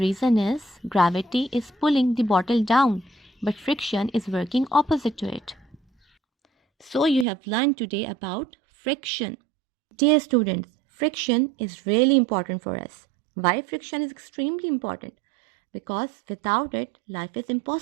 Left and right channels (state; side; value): drops out; left; at 7.2 s